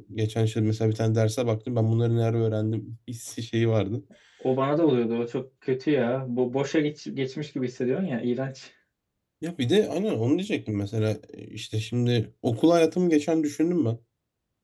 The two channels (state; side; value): identical; both; correlation 1.00